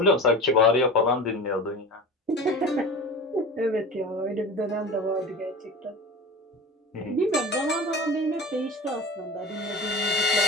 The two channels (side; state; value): both; normal; correlation 0.32